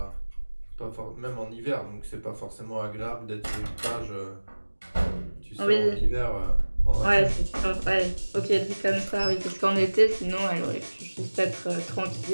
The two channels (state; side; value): inverted; both; correlation -1.00